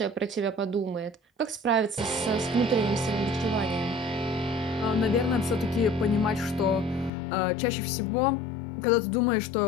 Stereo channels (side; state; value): right; drops out; at 7.1 s